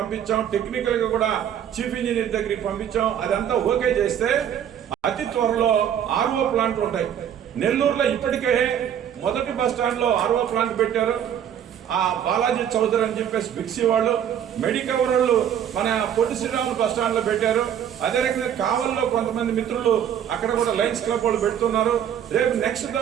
టెక్నికల్ గా కూడా చీఫ్ ఇంజనీర్ దగ్గరికి పంపించాం. అదంతా ఓకే చేస్తే అతి త్వరలో ఆర్ఓ ప్లాంట్లు ఉంటాయి. నెల్లూరులో ఇప్పటికే మొదటి బస్ స్టాండ్ లో ఆర్ఓ ప్లాంట్ పెట్టారు. ఆ బాలాజీ చౌదరి అని చెప్పేసి బిక్సీ వాళ్ళు, మెడికవర్ వాళ్ళు మన పొట్టి శ్రీరాములు బస్ స్టాండ్ లో పెట్టారు. అదే రకంగా కావల్లో కొంతమంది మిత్రులు అక్కడ కూడా లయన్స్ క్లబ్ వాళ్ళు పెడుతున్నారు. రేపు నెక్స్ట్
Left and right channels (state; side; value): quieter; left; 9.5 dB